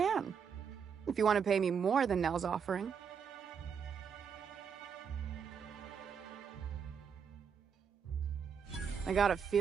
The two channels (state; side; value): quieter; left; 6.9 dB